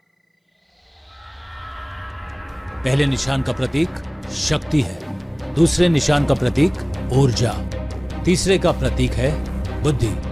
पहले निशान का प्रतीक शक्ति है, दूसरे निशान का प्रतीक ऊर्जा, तीसरे का प्रतीक है बुद्धि,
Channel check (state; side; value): identical; both; correlation 1.00